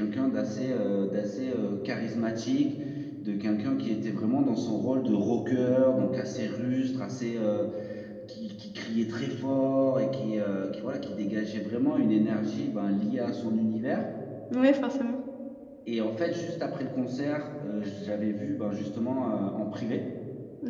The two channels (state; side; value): identical; both; correlation 1.00